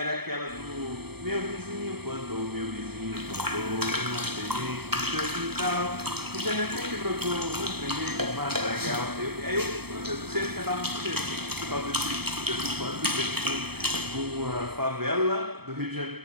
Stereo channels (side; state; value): left; late; 0.97 ms